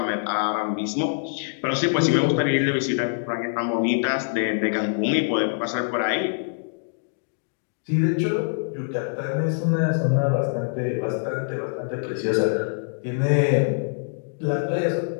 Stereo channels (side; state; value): right; silent; digital silence